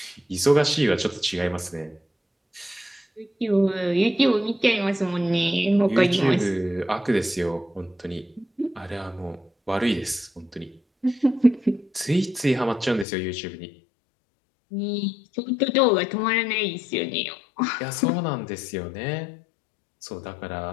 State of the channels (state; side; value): drops out; right; at 13.1 s